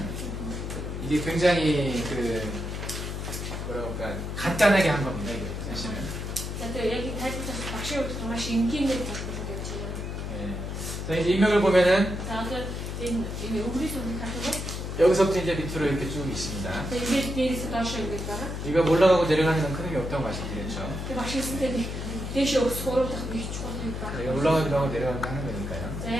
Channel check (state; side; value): noise; left; hum, 5 dB below the sound